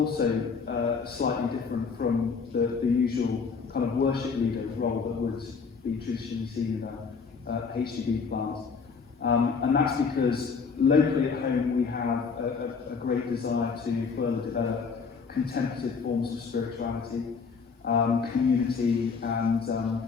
slightly different from the usual kind of worship leader role that would be traditionally seen in a HDB plant. And that's because locally at home we have a great desire to further develop contemplative forms of spirituality, community, and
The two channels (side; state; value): right; quieter; 5.3 dB